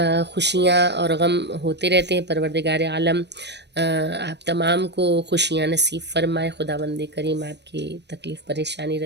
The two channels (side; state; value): left; late; 0.50 ms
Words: خوشیاں اور غم ہوتے رہتے ہیں۔ پروردگار عالم آپ تمام کو خوشیاں نصیب فرمائے، خداوند کریم آپ کی تکلیف، پریشانی،